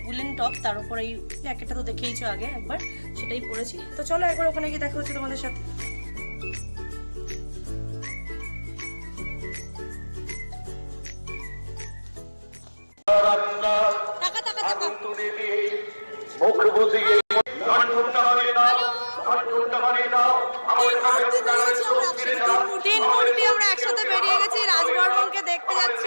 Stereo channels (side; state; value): both; inverted; correlation -1.00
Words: উলেন টপ, তার উপর এই জ্যাকেটটা তো দেখেইছো আগে একবার, সেটাই পরেছি। তো চলো একবার ওখানে গিয়ে দেখা হচ্ছে তোমাদের সাথে। তিন মূর্তি আমরা একসাথে বেরিয়ে গেছি, রাজবর্মনকে দেখতে যাচ্ছি